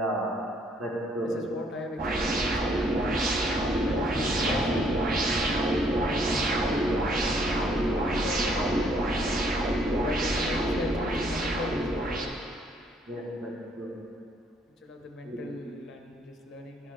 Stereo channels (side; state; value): both; normal; correlation 0.66